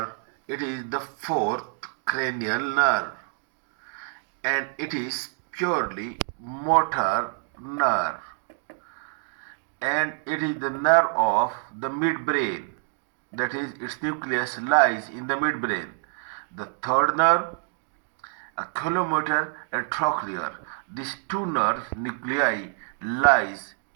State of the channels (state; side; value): silent; left; digital silence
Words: it is the fourth cranial nerve, and it is purely motor nerve, and it is the nerve of the midbrain. That is, its nucleus lies in the midbrain. The third nerve, oculomotor and trochlear. These two nerve nuclei lies